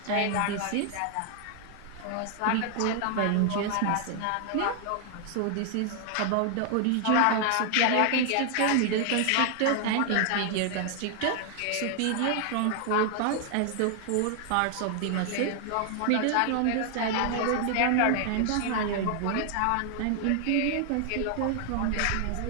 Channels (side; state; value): both; different; correlation 0.00